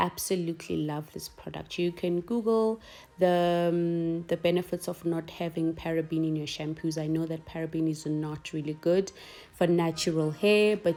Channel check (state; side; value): identical; both; correlation 1.00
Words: love this product. You can Google the benefits of not having paraben in your shampoos. I know that paraben is not really good for natural hair,